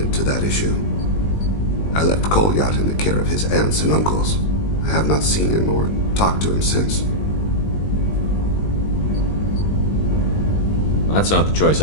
to that issue. I left Kolyat in the care of his aunts and uncles. I have not seen him or talked to him since. That's not the choice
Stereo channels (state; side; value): late; right; 20 ms